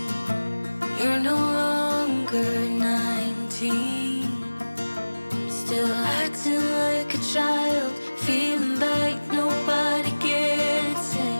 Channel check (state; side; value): inverted; both; correlation -1.00